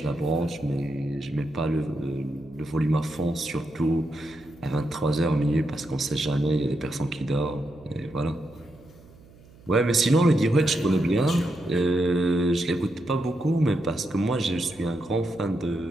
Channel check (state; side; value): noise; right; hum, 24 dB below the sound